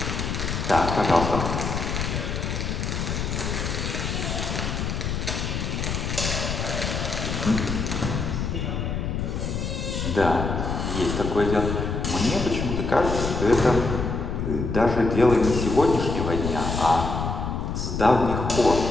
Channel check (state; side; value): noise; left; rumble, 2 dB below the sound